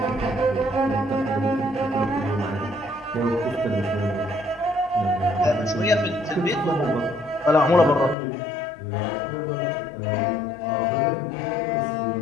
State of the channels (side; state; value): right; drops out; at 8.2 s